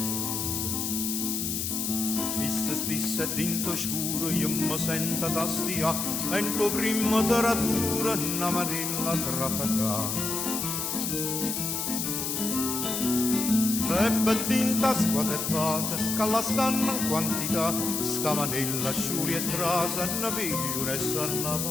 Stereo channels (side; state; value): left; noise; hiss, 2 dB below the sound